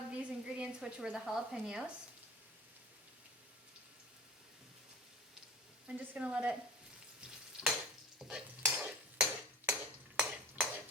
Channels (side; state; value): both; normal; correlation 0.38